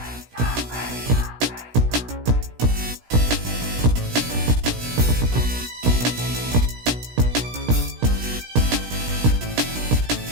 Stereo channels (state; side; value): late; left; 17 ms